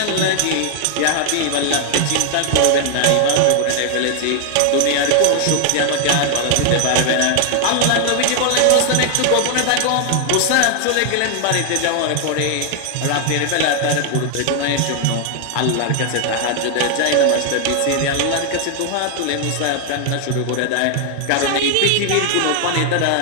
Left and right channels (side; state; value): both; different; correlation 0.00